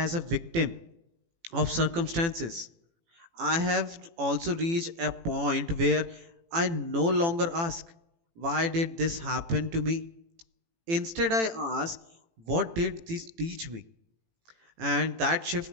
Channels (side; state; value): left; late; 18 ms